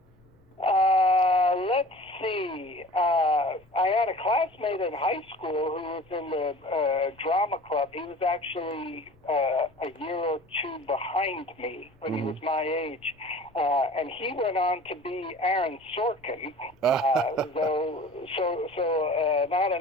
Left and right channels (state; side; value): noise; left; rumble, 30 dB below the sound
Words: Let's see. I had a classmate in high school who was in the drama club. He was actually a year or two behind me when he was my age. And he went on to be Aaron Sorkin. So not